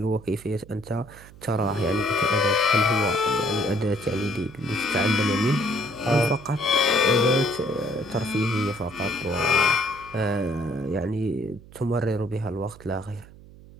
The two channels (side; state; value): right; noise; hum, 20 dB below the sound